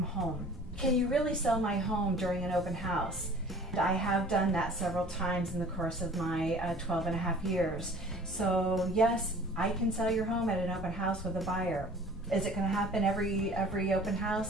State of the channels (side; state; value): both; normal; correlation 0.47